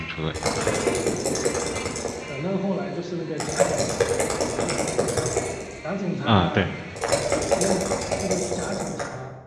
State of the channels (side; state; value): both; identical; correlation 1.00